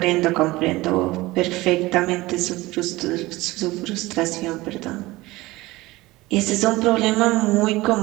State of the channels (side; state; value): left; quieter; 19.6 dB